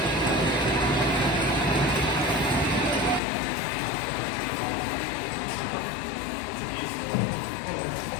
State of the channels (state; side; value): drops out; right; at 3.2 s